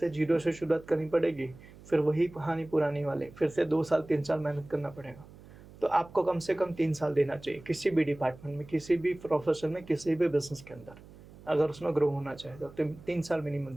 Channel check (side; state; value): right; noise; hum, 20 dB below the sound